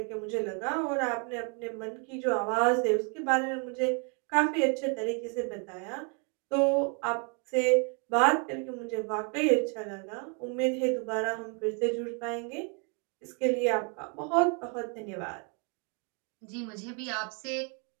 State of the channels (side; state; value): left; quieter; 37.1 dB